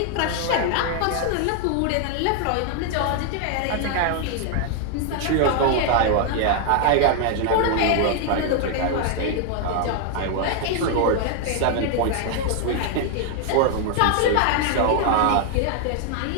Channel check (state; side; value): different; both; correlation 0.00